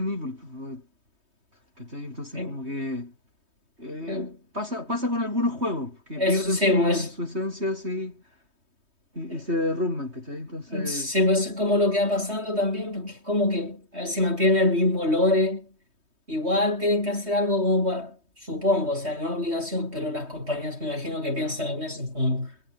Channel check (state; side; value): late; left; 3.2 ms